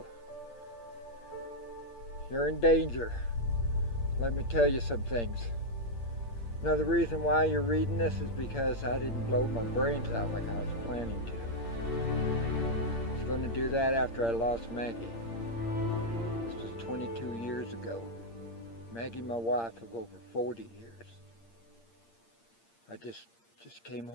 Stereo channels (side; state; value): right; late; 8.7 ms